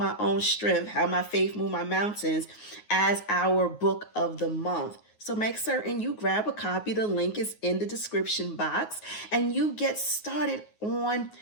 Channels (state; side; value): late; right; 9.5 ms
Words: Own Strength, How My Faith Moved My Mountains, as our book of the month. So make certain you grab a copy. The link is in the description box, and you get started on